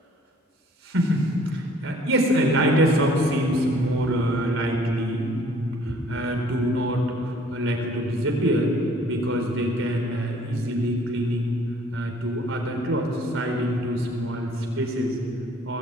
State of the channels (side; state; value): both; normal; correlation 0.56